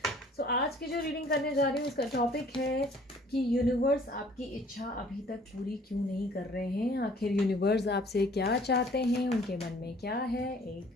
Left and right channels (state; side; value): normal; both; correlation 0.55